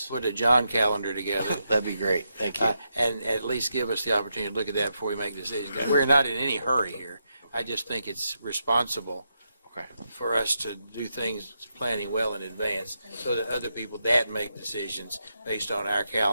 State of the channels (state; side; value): inverted; both; correlation -0.83